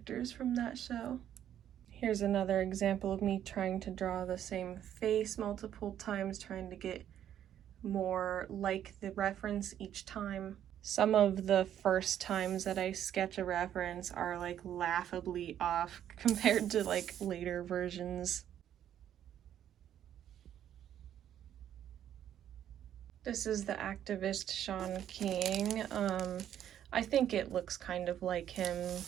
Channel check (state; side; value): quieter; left; 10.5 dB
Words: from that show. Here's another example of me trying to draw the same face multiple times, trying to get more like the reference each time. Some of the first times that I sketch a reference are like laughably off compared to like later versions. This is the activist Sean King. I think it looks kind of like him,